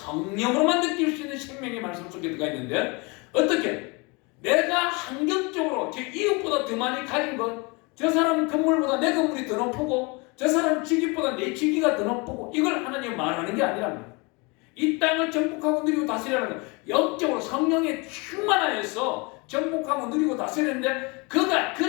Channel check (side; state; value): right; quieter; 28.5 dB